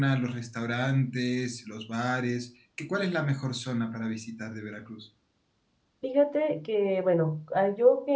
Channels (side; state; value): both; identical; correlation 1.00